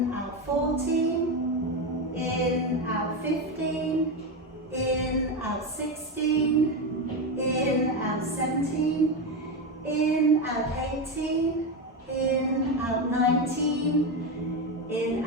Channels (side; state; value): both; normal; correlation 0.13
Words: out 14. In, out 15. In, out 16. In, out 17. In, out 18. In, out 19. In,